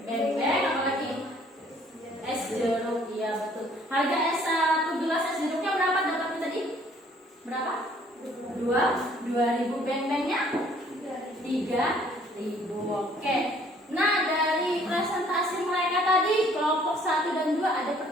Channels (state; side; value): normal; both; correlation 0.59